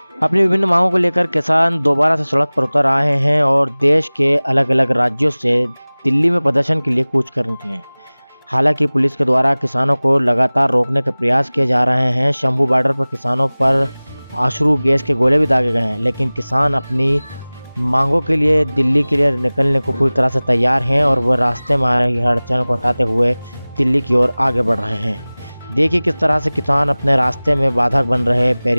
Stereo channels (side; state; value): both; inverted; correlation -0.99